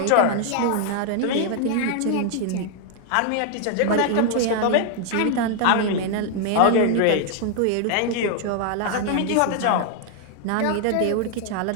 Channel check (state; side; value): different; both; correlation 0.00